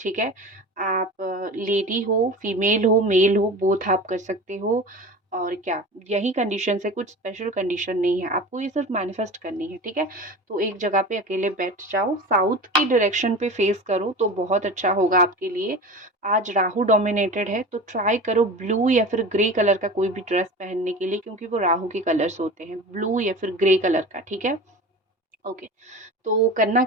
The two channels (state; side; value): normal; both; correlation 0.33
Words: है? आप लेडी हो, फीमेल हो, मेल हो, बोथ आप कर सकते हो। और क्या, यही कंडीशंस है, कुछ स्पेशल कंडीशन नहीं है, आपको ये सिर्फ मैनिफेस्ट करनी है, ठीक है? तो एक जगह पे अकेले बैठ जाओ, साउथ की डायरेक्शन पे फेस करो तो बहुत अच्छा होगा आपके लिए। आज राहु डोमिनेटेड है, तो ट्राई करो ब्लू या फिर ग्रे कलर का कोई भी ड्रेस पहनने के लिए, क्योंकि वो राहु के कलर्स होते हैं, ब्लू या फिर ग्रे कलर का, ठीक है? ओके। तो करना